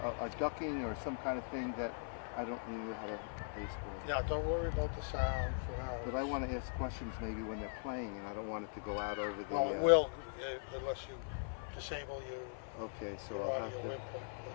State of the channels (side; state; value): right; silent; 51 dB below the other